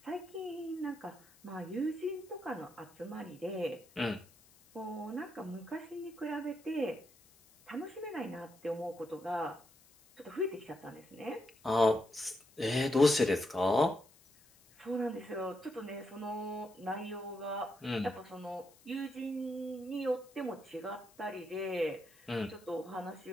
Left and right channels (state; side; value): noise; left; hiss, 27 dB below the sound